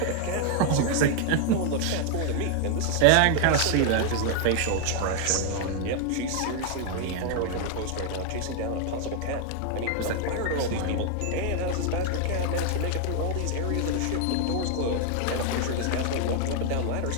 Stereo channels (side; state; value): both; different; correlation 0.00